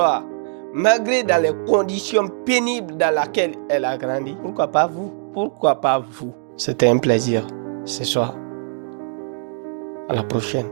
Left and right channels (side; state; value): left; silent; digital silence